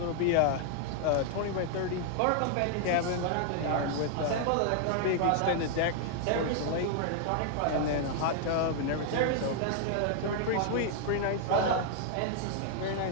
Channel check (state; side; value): different; both; correlation 0.00